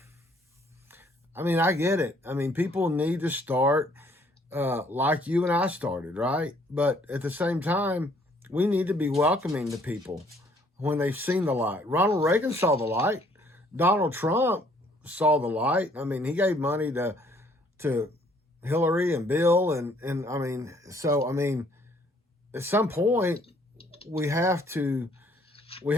I get it. People need to start like you and I started, right? But at the same time, we need to be welcoming to people when they've seen the light. Ronald Reagan saw the light. Donald Trump saw the light. He gave money to Hillary and Bill. At some point, we have to we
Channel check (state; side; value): normal; both; correlation 0.63